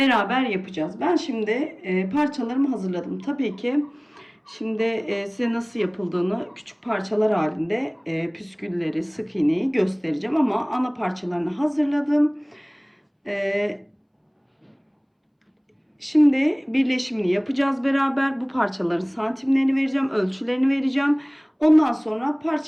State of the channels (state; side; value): identical; both; correlation 1.00